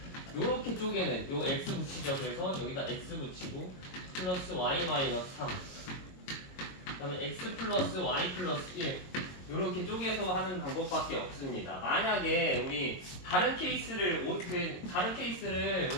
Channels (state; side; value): late; right; 22 ms